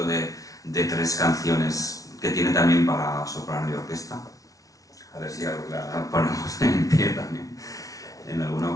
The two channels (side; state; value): right; late; 0.17 ms